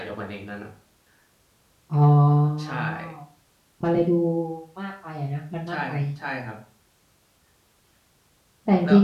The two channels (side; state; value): both; identical; correlation 1.00